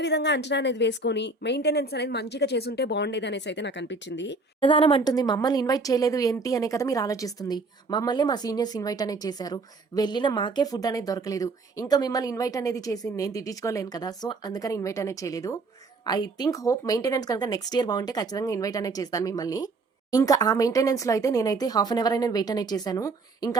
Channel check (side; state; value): left; quieter; 3.7 dB